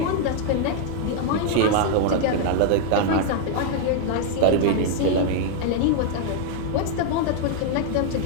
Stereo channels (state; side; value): different; both; correlation 0.00